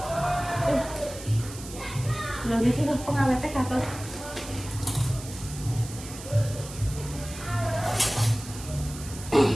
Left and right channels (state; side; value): noise; right; hiss, 13 dB below the sound